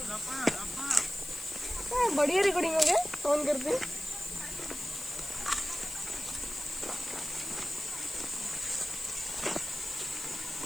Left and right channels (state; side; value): noise; left; hiss, 10 dB below the sound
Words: बढ़िया रिकॉर्डिंग हो गया ऑन करते हैं